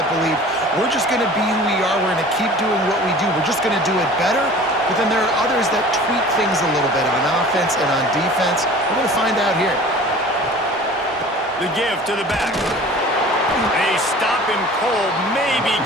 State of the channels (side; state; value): both; normal; correlation 0.44